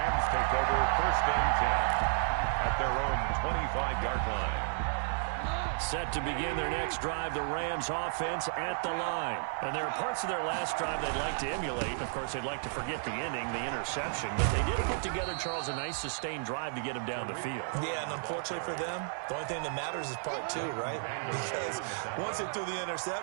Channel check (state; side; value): silent; left; 56 dB below the other